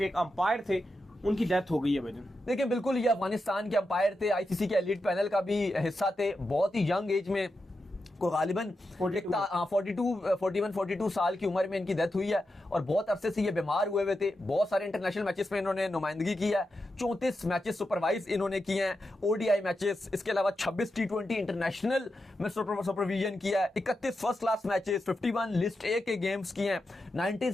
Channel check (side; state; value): both; normal; correlation 0.88